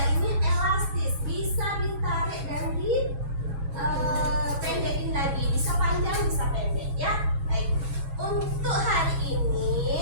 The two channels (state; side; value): late; left; 7.3 ms